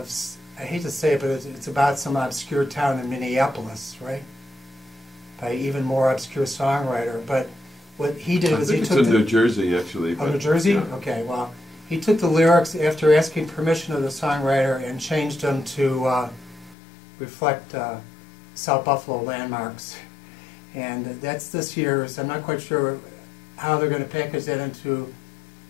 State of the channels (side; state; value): right; drops out; at 16.8 s